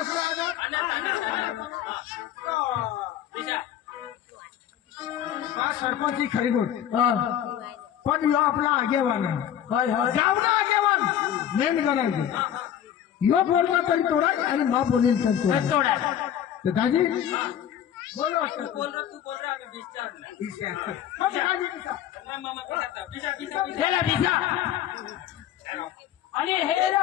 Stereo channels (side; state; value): right; quieter; 10.3 dB